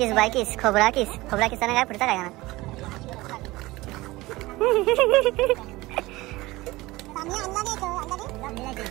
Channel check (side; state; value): left; quieter; 20.0 dB